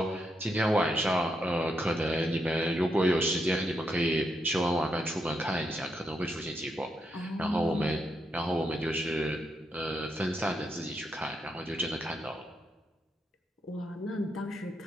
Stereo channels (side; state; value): both; normal; correlation 0.81